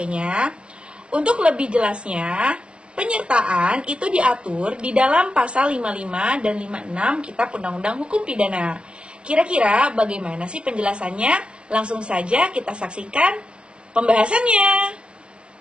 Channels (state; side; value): late; left; 0.059 ms